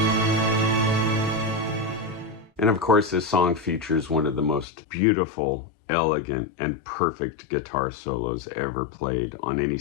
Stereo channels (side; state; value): right; drops out; at 4.7 s